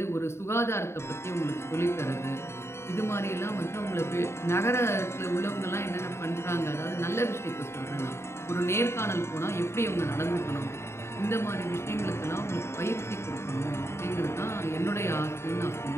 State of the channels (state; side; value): late; right; 0.13 ms